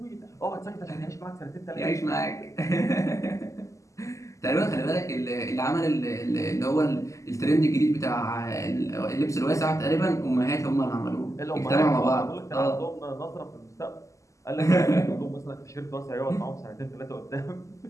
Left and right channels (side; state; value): right; late; 0.16 ms